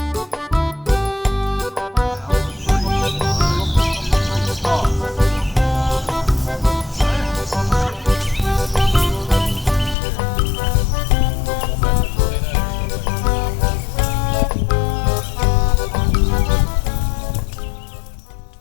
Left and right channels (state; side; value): drops out; right; at 10.0 s